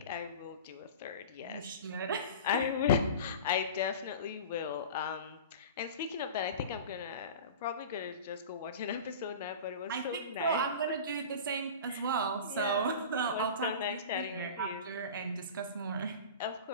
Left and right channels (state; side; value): inverted; both; correlation -0.34